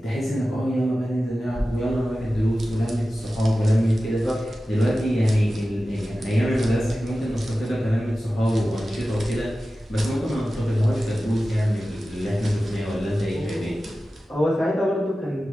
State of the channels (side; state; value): both; normal; correlation 0.94